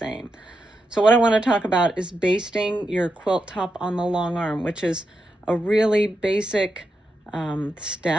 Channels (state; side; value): normal; both; correlation 0.86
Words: So what I want to talk about is basting your quilt top on the long arm, which is a really basic